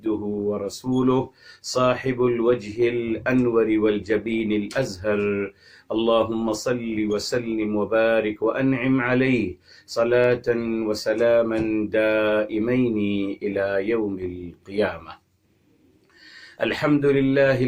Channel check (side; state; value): both; identical; correlation 1.00